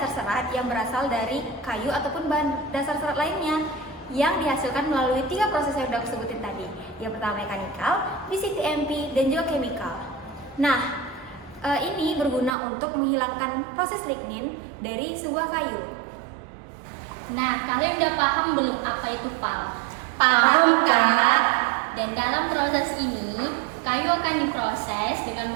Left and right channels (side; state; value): left; drops out; at 12.5 s